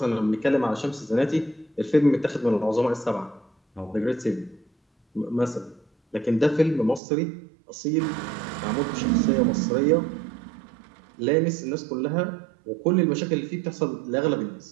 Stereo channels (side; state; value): left; drops out; at 7.0 s